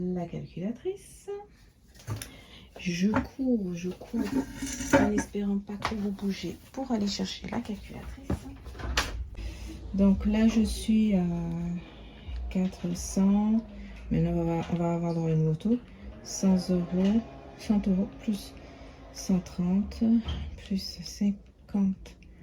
calculatrice. Je cours en espérant pas trop vous bouger pour aller chercher la calculatrice. Donc là, je suis à 400. Maintenant, on va avoir dans une moto 100 €, 100 € plus 130, plus 50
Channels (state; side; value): identical; both; correlation 1.00